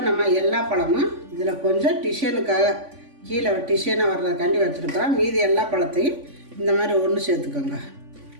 நம்ம எல்லா பழமும் இதில் கொஞ்சம் டிசைனுக்காக கீழே டிசைனாக வர்றதுக்காண்டி வச்சுருக்குறோம். மீதி எல்லா பழத்தையும் இந்த மாதிரி ஒன்று சேர்த்துக்கோங்க.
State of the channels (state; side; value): late; left; 3.5 ms